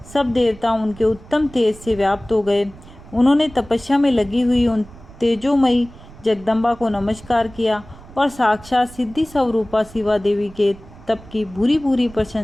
सब देवता उनके उत्तम तेज से व्याप्त हो गए। उन्होंने तपस्या में लगी हुई उन तेजोमयी जगदम्बा को नमस्कार किया और साक्षात सिद्धि स्वरूपा शिवा देवी के तप की भूरी भूरी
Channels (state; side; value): noise; right; rumble, 20 dB below the sound